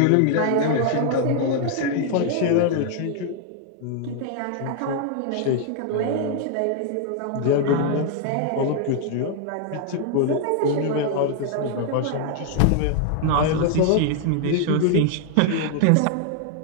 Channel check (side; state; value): both; different; correlation 0.00